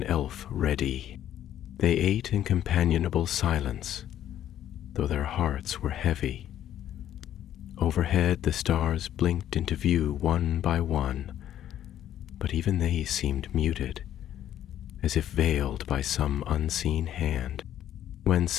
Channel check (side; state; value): right; quieter; 11.3 dB